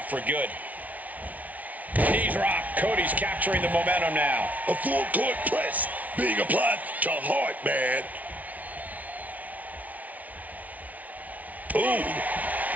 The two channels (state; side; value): late; left; 0.072 ms